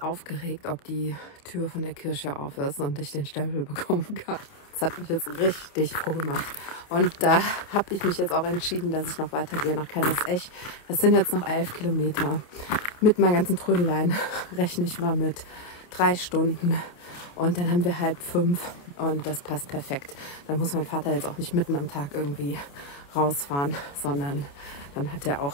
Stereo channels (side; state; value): right; late; 28 ms